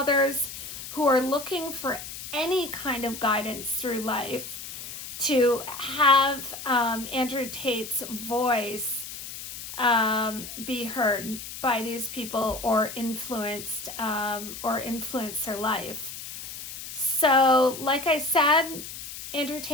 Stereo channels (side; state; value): left; noise; hiss, 10 dB below the sound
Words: who are looking for any kind of guidance through life to have Andrew Tate's voice be heard by these people or influence their life. So, like I said, Andrew